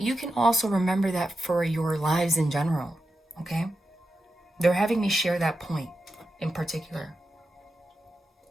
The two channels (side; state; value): both; normal; correlation 0.89